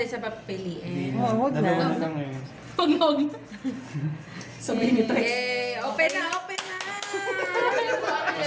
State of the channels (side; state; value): both; identical; correlation 1.00